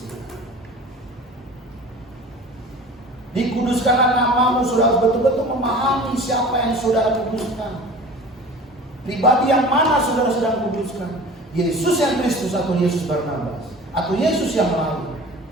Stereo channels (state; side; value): normal; both; correlation 0.40